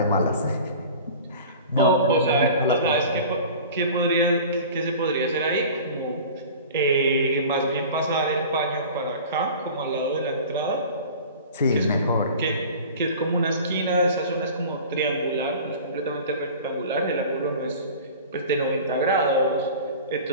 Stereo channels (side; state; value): both; inverted; correlation -0.40